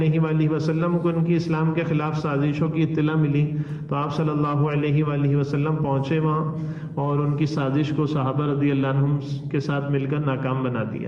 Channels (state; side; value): identical; both; correlation 1.00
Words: وآلہ وسلم کو ان کی اسلام کے خلاف سازشوں کی اطلاع ملی تو آپ صلی اللہ علیہ وآلہ وسلم پہنچے وہاں اور ان کی سازش کو صحابہ رضی اللہ عنہم کے ساتھ مل کر ناکام بنا